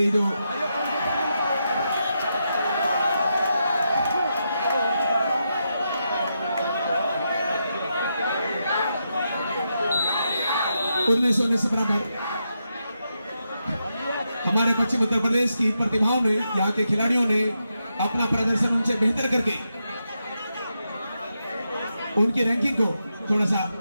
जो उन्नीस से बराबर हमारे पश्चिम उत्तर प्रदेश की प्रतिभाओं ने, यहाँ के खिलाड़ियों ने अपना प्रदर्शन उनसे बेहतर करके उनकी रैंकिंग को थोड़ा सा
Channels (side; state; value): both; inverted; correlation -0.84